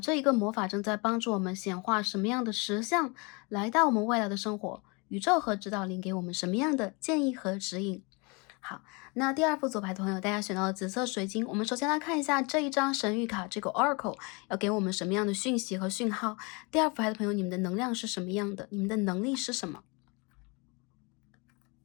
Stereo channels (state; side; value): quieter; right; 29.6 dB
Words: 这一个魔法正在帮助我们显化什么样的实相，来到我们未来的生活。宇宙和指导灵给我们什么样的建议和指引？好，那第2副组牌的朋友，大家选到了紫色水晶。我们首先来看一下这一张神谕卡，这个 Oracle 要给我们什么样的讯息和讯号？第2副牌的朋友，你们的能量是什么样的？你们的能力是什么？